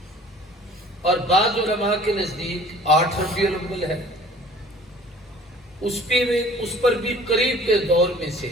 اور بعض علماء کے نزدیک 8 ربیع الاول ہے۔ اس پر بھی قریب کے دور میں سے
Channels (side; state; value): both; normal; correlation 0.49